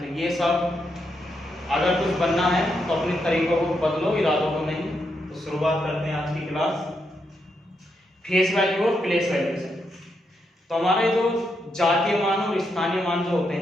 ये सब अगर कुछ बनना है तो अपने तरीकों को बदलो, इरादों को नहीं। तो शुरुआत करते हैं आज की क्लास फेस वैल्यू और प्लेस वैल्यू से। तो हमारे जो जातीय मान और स्थानीय मान जो होते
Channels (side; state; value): both; normal; correlation 0.81